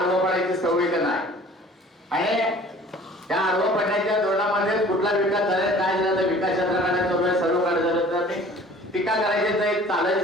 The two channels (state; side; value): normal; both; correlation 0.48